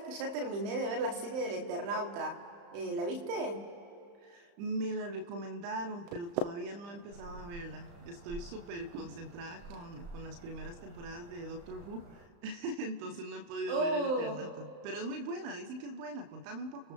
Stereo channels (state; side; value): late; left; 35 ms